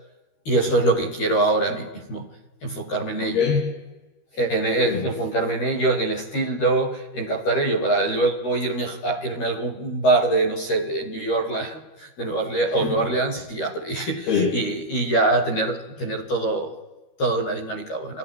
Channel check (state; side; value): late; right; 13 ms